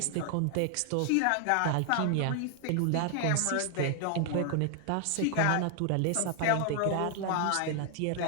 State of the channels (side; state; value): both; different; correlation 0.00